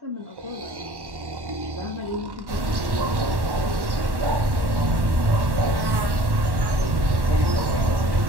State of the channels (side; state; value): left; late; 1.1 ms